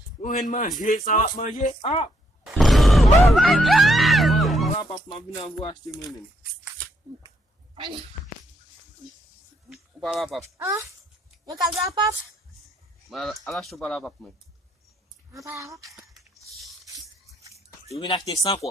On vient manger, ça va manger. Ah. Voilà, papa m'a venu vous acheter moi-même. Voilà, papa. Ah, eu quero dar papo. Mas ela achou para lá, papa, mãe. Je viens acheter 100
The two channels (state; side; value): normal; both; correlation 0.74